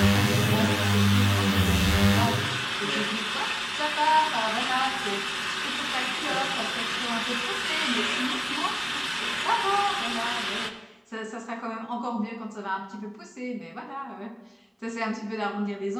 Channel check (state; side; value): identical; both; correlation 1.00